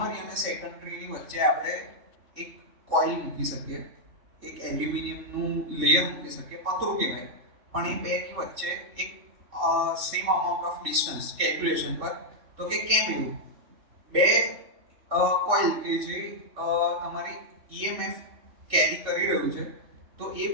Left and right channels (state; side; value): late; left; 3.6 ms